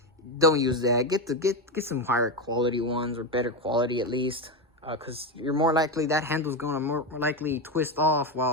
don't use that. Get some higher quality ones, or better quality at least. Because you're more likely, that handle's going to more likely twist off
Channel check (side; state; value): both; normal; correlation 0.13